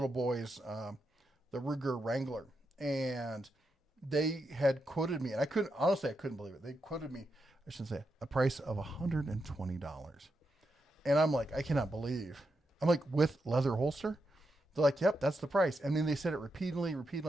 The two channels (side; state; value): both; normal; correlation 0.85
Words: boys the Ruger Wrangler. And they had quoted me, and I couldn't believe it. They quoted me, I shouldn't say, a price of $120. And I'm like, I cannot believe. I'm like, with leather holster? They're like, yep, that's the price. And then they said it repeatedly.